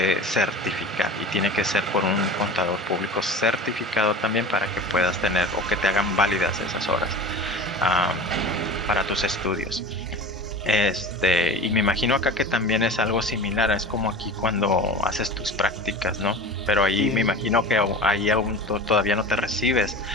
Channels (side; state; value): both; normal; correlation 0.34